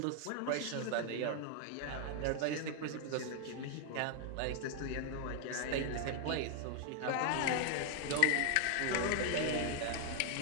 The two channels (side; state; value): both; different; correlation 0.00